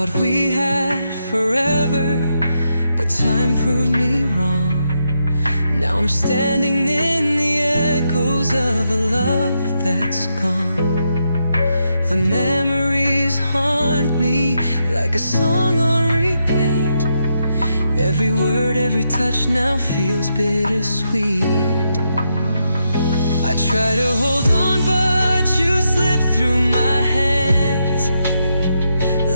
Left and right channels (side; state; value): both; inverted; correlation -0.82